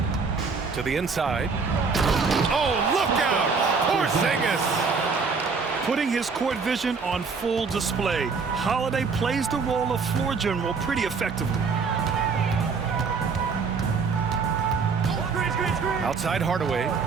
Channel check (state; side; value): quieter; left; 5.0 dB